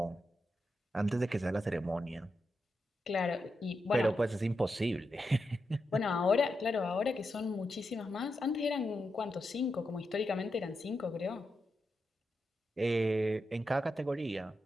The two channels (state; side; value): normal; both; correlation 0.87